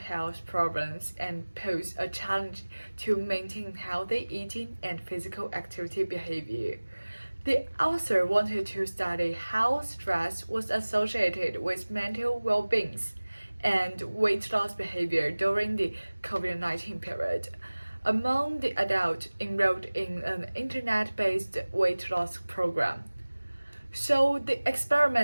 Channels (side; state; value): both; inverted; correlation -1.00